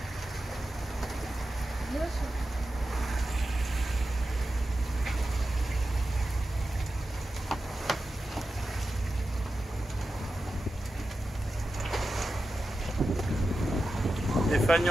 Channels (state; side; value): normal; both; correlation 0.92